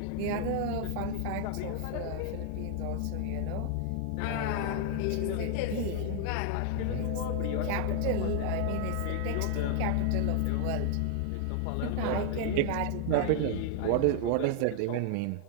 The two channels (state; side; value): different; both; correlation 0.00